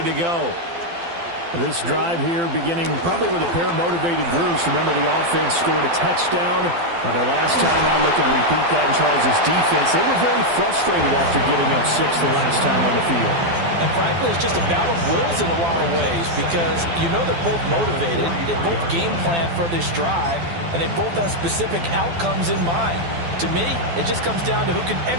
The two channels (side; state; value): left; late; 12 ms